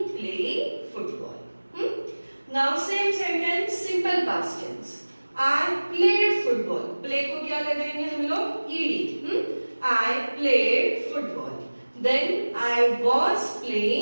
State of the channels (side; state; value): both; inverted; correlation -1.00